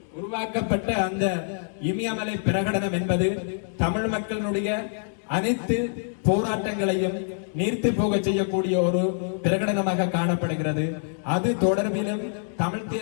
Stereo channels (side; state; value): right; silent; digital silence